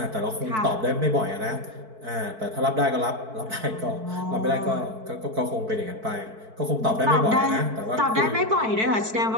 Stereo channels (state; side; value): late; left; 4.6 ms